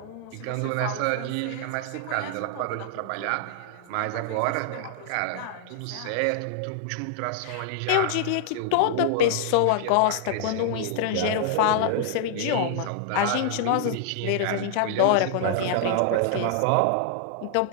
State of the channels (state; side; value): different; both; correlation -0.01